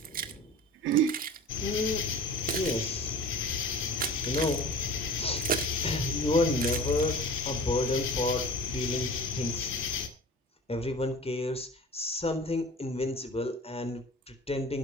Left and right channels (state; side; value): normal; both; correlation 0.39